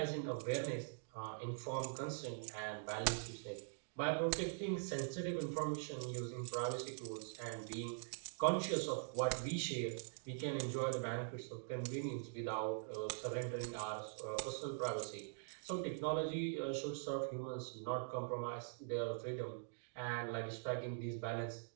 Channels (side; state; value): left; silent; digital silence